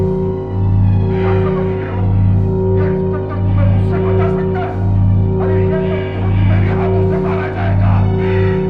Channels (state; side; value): identical; both; correlation 1.00